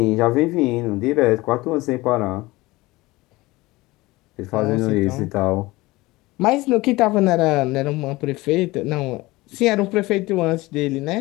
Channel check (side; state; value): right; quieter; 20.5 dB